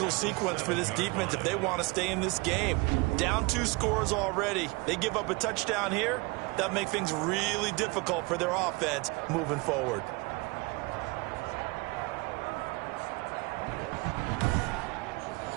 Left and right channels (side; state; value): left; quieter; 25.9 dB